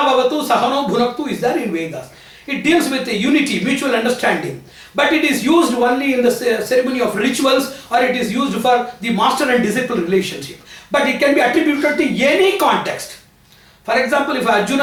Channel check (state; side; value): identical; both; correlation 1.00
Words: Bhavatu Sahano Bhunaktu is there in Vedas. It deals with the unity, mutual understanding. But it is used only in the ceremony of rituals, or it is used for the master and disciple relationship. But it can be attributed to any context. For example, if